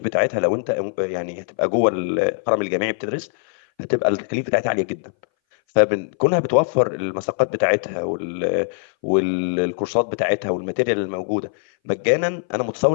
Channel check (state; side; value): silent; right; 61 dB below the other